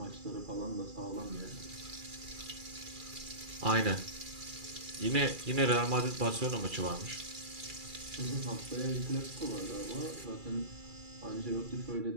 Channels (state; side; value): late; left; 2.4 ms